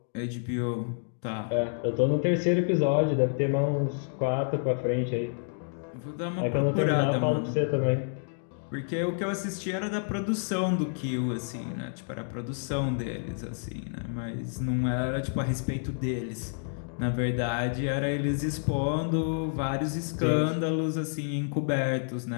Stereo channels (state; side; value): silent; right; digital silence